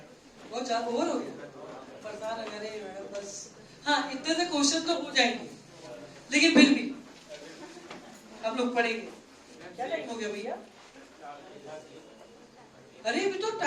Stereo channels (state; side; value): identical; both; correlation 1.00